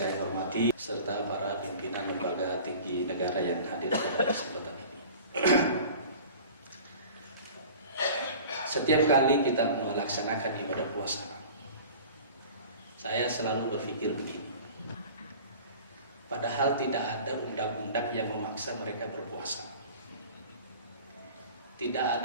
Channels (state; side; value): inverted; both; correlation -0.42